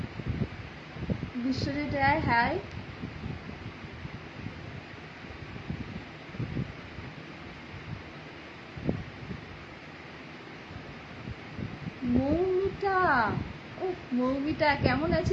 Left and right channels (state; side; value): identical; both; correlation 1.00